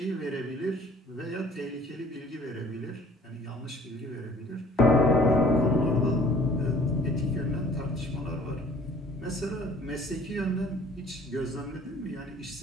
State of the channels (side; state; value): both; normal; correlation 0.53